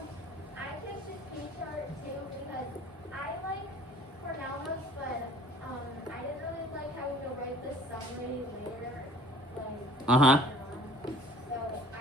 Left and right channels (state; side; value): normal; both; correlation 0.49